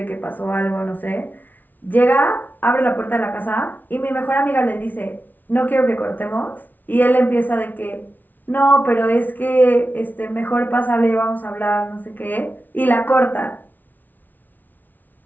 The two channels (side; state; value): right; late; 0.084 ms